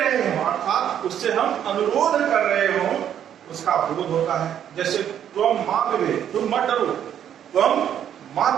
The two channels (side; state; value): left; quieter; 9.7 dB